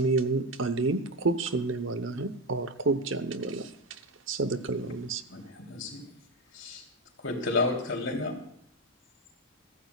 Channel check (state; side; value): normal; both; correlation 0.15